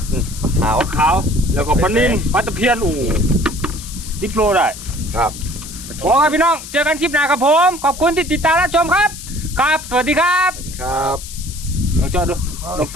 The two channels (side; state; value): left; noise; hiss, 13 dB below the sound